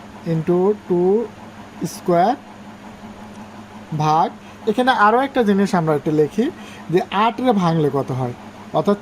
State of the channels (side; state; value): both; identical; correlation 1.00